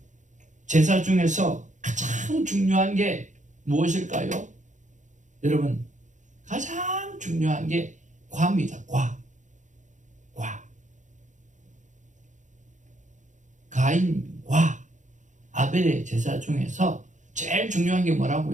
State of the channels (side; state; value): left; late; 0.36 ms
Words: 제사 중에서 가장 중요한 게 무엇일까요? 여러분, 가장 중요한 게 과입니다. 과. 가인과 아벨의 제사 중에서 제일 중요한 게